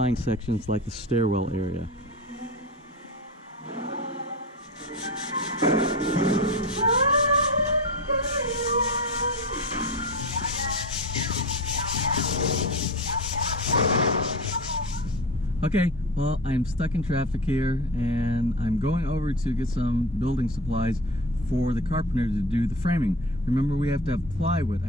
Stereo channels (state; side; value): normal; both; correlation 0.28